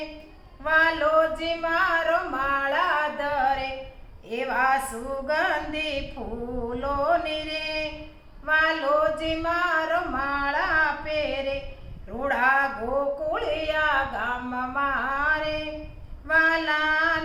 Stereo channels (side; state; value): both; identical; correlation 1.00